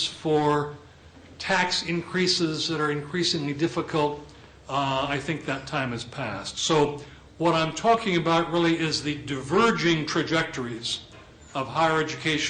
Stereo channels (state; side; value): identical; both; correlation 1.00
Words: for tax increases that are increasingly difficult, I think that time has passed. So what I'm talking about really is the diverging trajectories of higher